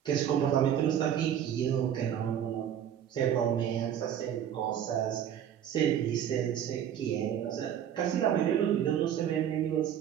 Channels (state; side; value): quieter; left; 9.7 dB